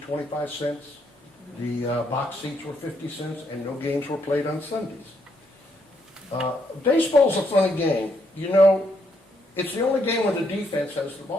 cents. The box seats were 50 cents, and no games were played on Sundays. Baseball's a funny game. You know, it's the only game where the defense has the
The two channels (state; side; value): normal; both; correlation 0.75